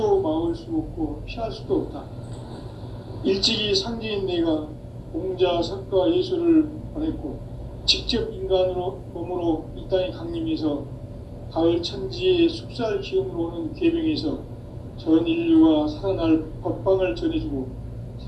막을 수 없고 피할 수도 없다. 일찍이 상제인 내가 공자, 석가, 예수를 보냈고 직접 인간으로 몸으로 이 땅에 강림해서 가을 천지의 숲살 기운으로 오는 계명에서 전 인류가 살아날 법방을 전해주고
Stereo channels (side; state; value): both; identical; correlation 1.00